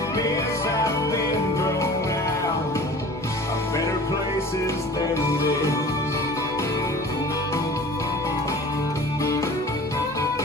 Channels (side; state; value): both; normal; correlation 0.42